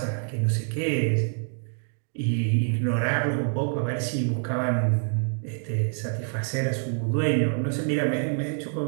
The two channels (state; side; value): silent; left; 58 dB below the other